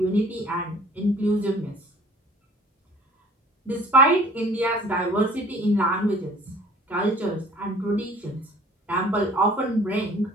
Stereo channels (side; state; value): both; normal; correlation 0.50